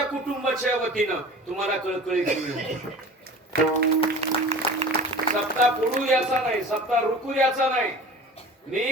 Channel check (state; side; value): normal; both; correlation 0.39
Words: कुटुंबाच्या वतीनं तुम्हाला कळकळीची विनंती. सप्ताह पुढू याचा नाही, सप्ताह रुकू याचा नाही.